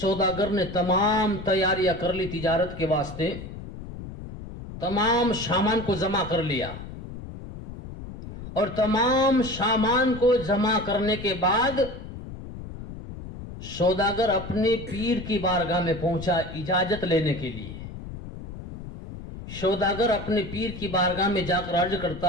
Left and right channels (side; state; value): left; noise; rumble, 11 dB below the sound